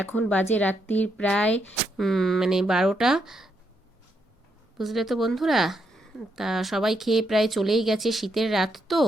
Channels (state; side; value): normal; both; correlation 0.78